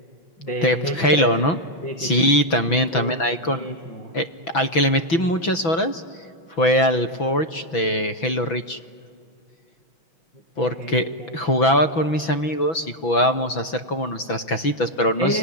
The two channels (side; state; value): right; late; 6.1 ms